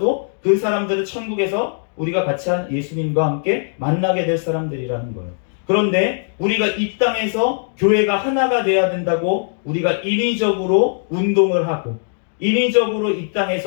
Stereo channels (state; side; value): silent; right; digital silence